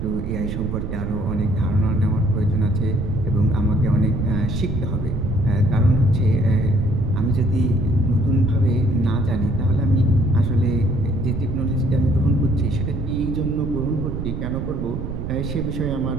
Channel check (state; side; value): noise; right; rumble, 5 dB below the sound